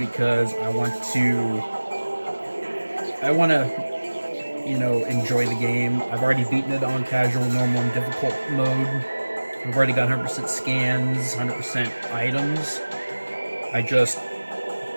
I want to, you know, enjoy the game. I've already beaten it on casual, normal, and difficult mode. I've already got 100% scans, 100% items. I just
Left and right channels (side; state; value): both; inverted; correlation -1.00